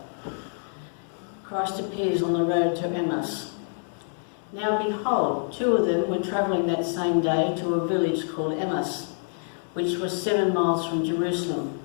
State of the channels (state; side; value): silent; right; 60 dB below the other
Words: Christ appears on the road to Emmaus. Now behold, two of them were travelling that same day to a village called Emmaus, which was 7 miles from Jerusalem.